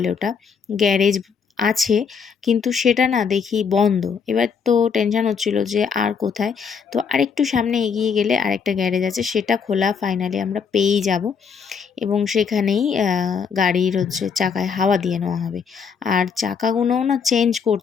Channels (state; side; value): quieter; right; 6.2 dB